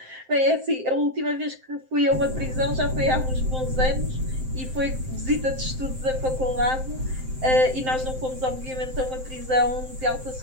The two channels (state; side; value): late; left; 7.7 ms